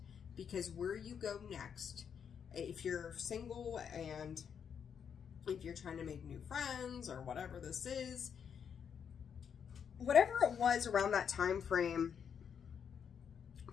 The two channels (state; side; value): quieter; right; 7.5 dB